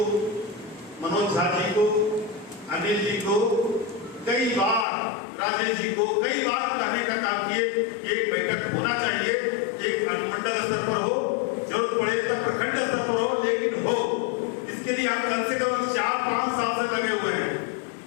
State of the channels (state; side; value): drops out; right; at 4.9 s